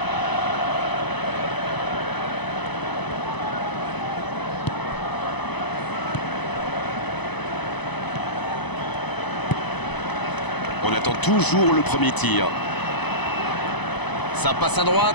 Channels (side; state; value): right; late; 0.99 ms